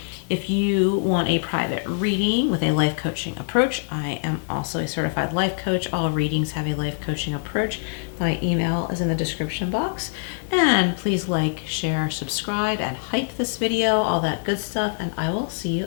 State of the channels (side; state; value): right; silent; 63 dB below the other